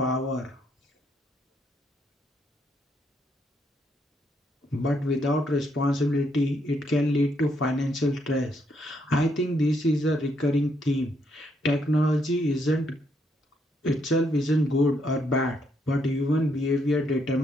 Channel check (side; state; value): both; normal; correlation 0.75